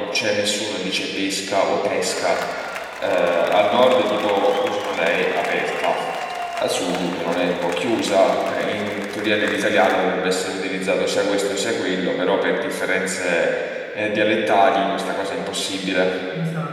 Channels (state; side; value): identical; both; correlation 1.00